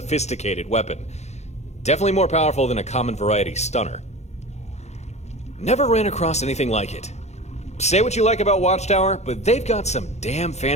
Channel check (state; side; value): late; right; 0.32 ms